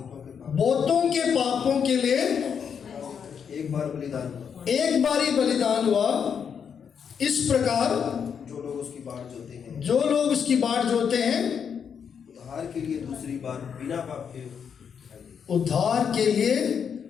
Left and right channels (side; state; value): right; quieter; 7.2 dB